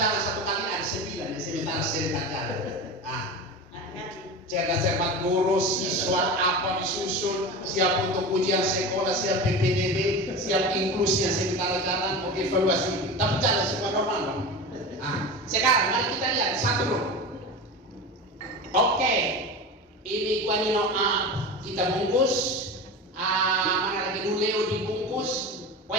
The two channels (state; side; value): normal; both; correlation 0.28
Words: satu kali ada 9, sementara serentak jalan. Cerdas-cermat guru, siswa apa disusun, siap untuk ujian sekolah, siap PPDB, siap inklusi yang sementara jalan, untuk evaluasi. Tapi jalan semua normal dong. Sekarang mari kita lihat satu dulu. Oke, ini guanino kita bungkus, mana lagi Nuleo dibungkus,